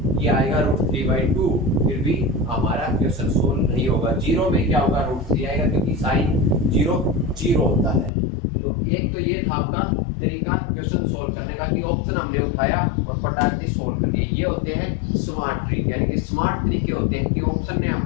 ये आएगा √3/2, फिर भी हमारा क्वेश्चन सोल्व नहीं होगा। 0 में क्या होगा, √3 आएगा, क्योंकि sin 0 होता है। तो एक तो ये था आपका तरीका क्वेश्चन सोल्व करने का, कि ऑप्शन हमने उठाया और फटाक से सोल्व कर दिया। ये होते हैं स्मार्ट ट्रिक, यानी कि स्मार्ट तरीके होते हैं कि ऑप्शन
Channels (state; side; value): drops out; right; at 8.1 s